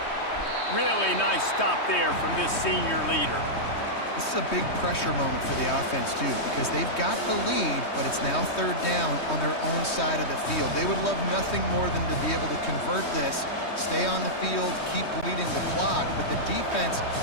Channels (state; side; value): late; right; 3.2 ms